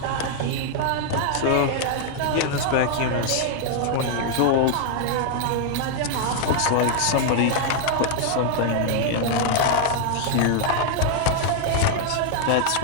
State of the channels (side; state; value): both; different; correlation 0.00